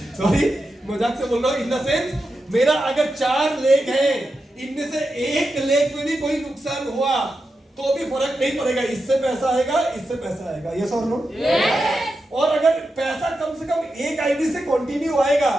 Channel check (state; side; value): normal; both; correlation 0.89